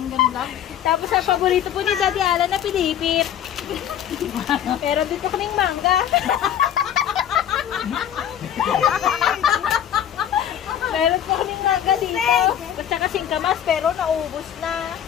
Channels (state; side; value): quieter; right; 10.0 dB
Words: lang. Tapos ang paborito po ni Daddy Alan na pinipit. Meron din po kaming mangga. Meron po kaming mangga dito. At saka singkamas pero naubos na.